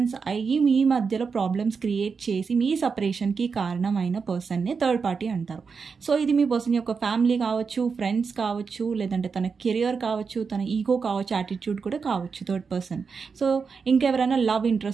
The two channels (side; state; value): left; quieter; 5.4 dB